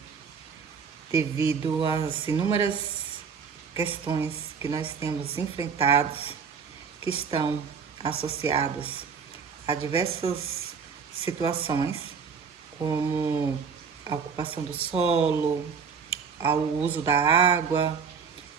devido às inúmeras questões que nós temos enfrentados, que estão associadas a diversas situações, como a ocupação do solo, ao uso da água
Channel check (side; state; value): left; quieter; 6.1 dB